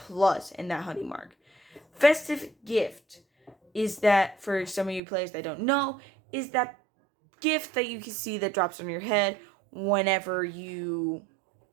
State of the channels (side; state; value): left; drops out; at 5.0 s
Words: and that honey mark. Festive Gift is that, for some of you players that don't know, is that gift that you can see that drops on your head whenever you